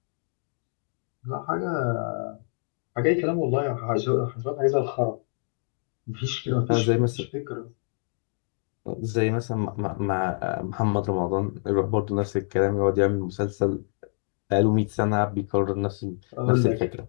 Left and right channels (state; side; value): silent; right; digital silence